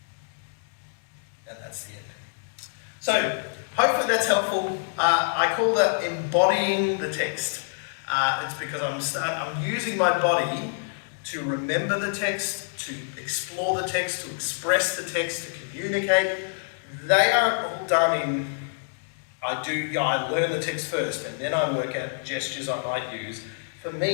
And that's the end. So, hopefully that's helpful. I call that embodying the text. It's because I'm using my body to remember the text, to explore the text, to express the text, to communicate. They are all done in, I learn the text first, and then I work out gestures I might use. For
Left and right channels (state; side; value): silent; right; digital silence